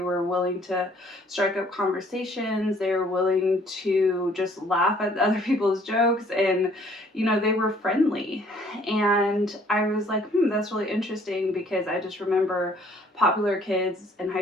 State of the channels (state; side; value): normal; both; correlation 0.60